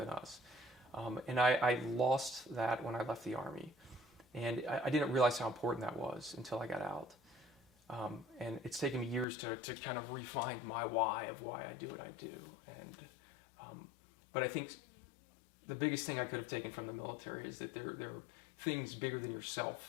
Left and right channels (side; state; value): right; drops out; at 9.2 s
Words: us. And I lost that when I left the Army. And I didn't realize how important that was until I got out. And it's taken me years to kind of refine my why of why I do what I do. But I think the biggest thing I could have taken from the military is that there are things bigger than